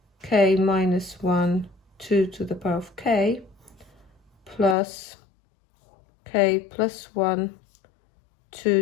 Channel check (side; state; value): right; drops out; at 4.8 s